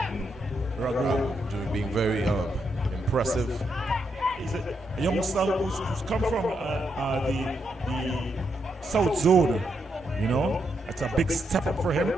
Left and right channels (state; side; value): normal; both; correlation 0.81